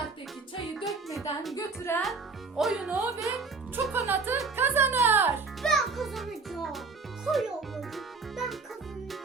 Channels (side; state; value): left; quieter; 4.4 dB